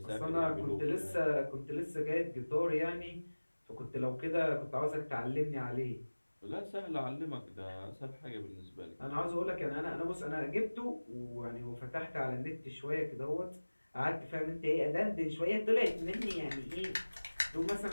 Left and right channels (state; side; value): inverted; both; correlation -1.00